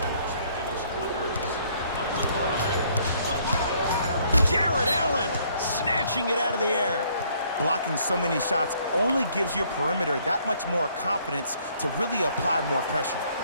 Jared Allen snatching it out of the air. Blocking so many shots only gives your perimeter that much more confidence to really apply more pressure.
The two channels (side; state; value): both; inverted; correlation -0.64